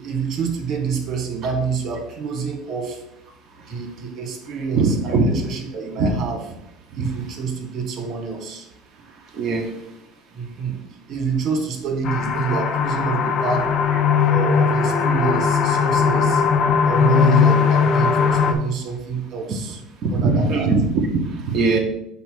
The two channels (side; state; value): both; normal; correlation 0.45